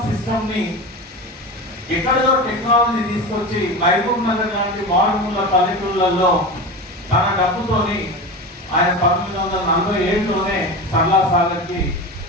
సిస్టమ్ ని ఎక్కడో టెక్నాలజీ తీసుకొచ్చి మహబూబ్ నగర్ లాంటి మారుమూల పల్లెటూళ్ళల్లో తన డబ్బుతోని ఆయన 1947లోనే సరళా సాగర్ కి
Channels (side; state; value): both; normal; correlation 0.26